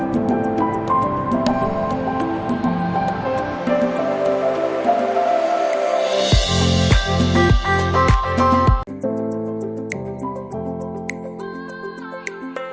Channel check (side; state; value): both; identical; correlation 1.00